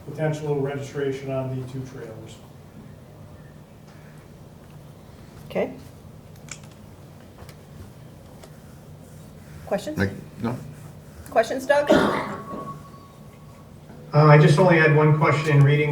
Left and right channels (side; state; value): both; identical; correlation 1.00